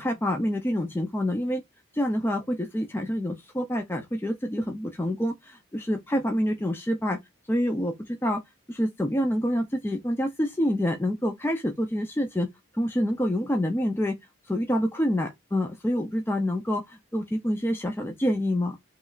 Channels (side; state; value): both; normal; correlation 0.88